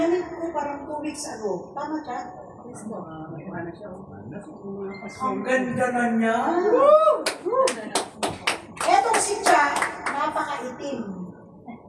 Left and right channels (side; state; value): both; identical; correlation 1.00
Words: ko parang 2 weeks ago. Tama, Cha? Ang ganda na niya. Etong si Cha, napakaitim.